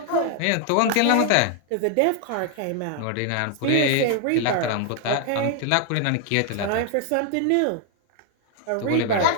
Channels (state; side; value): different; both; correlation 0.00